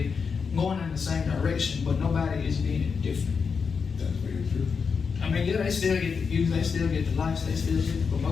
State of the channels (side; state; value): right; quieter; 5.7 dB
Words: going in the same direction, but nobody is being different. That's very true. I mean, yeah, they still get the views, they still get the likes, they still get the